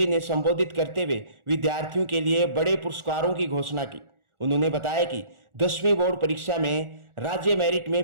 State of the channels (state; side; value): late; left; 1.4 ms